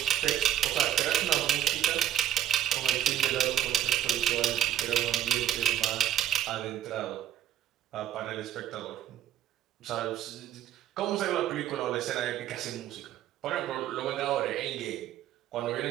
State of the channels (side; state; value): left; quieter; 11.3 dB